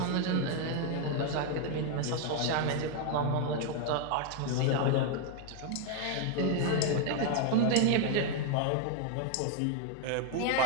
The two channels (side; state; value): both; different; correlation 0.01